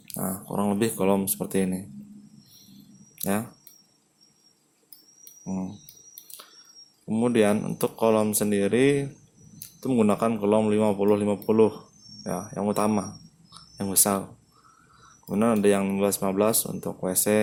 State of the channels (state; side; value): identical; both; correlation 1.00